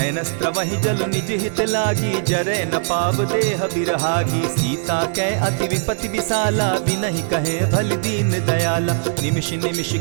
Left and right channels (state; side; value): silent; left; 66 dB below the other